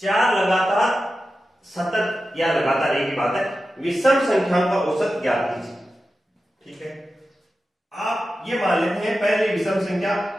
चार लगातार सतत या लगातार एक ही बात है, विषम संख्याओं का औसत ज्ञात कीजिए। ठीक है, आप ये मान लेते हैं पहली विषम संख्या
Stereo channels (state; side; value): normal; both; correlation 0.92